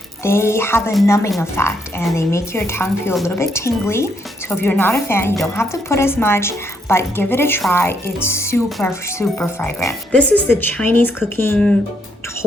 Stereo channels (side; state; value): both; normal; correlation 0.74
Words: They have a numbing effect and they make your tongue feel a little bit tingly. So if you're not a fan, you don't have to put as much, but give it a try. It's super, super fragrant. This is the Chinese cooking